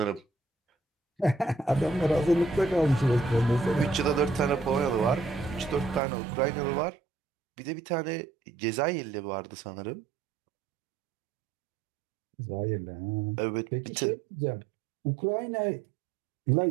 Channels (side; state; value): left; drops out; at 6.0 s